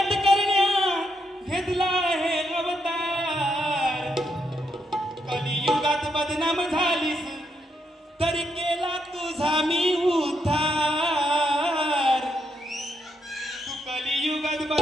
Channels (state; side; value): normal; both; correlation 0.79